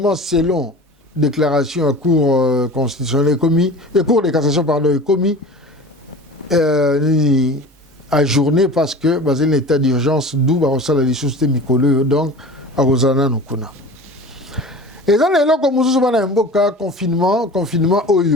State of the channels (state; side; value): normal; both; correlation 0.37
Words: selon déclaration à cour constitutionnelle commis et cour de cassation pardon est commis à journée parce que basé l'état d'urgence d'où la licence Mikolo donc à Rosana Nukuna. Et dans les locs comme nous confinement